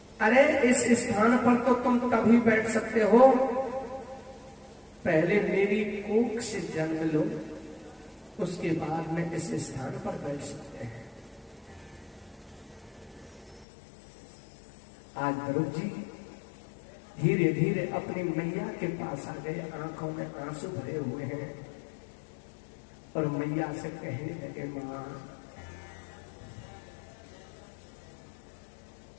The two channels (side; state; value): right; drops out; at 13.7 s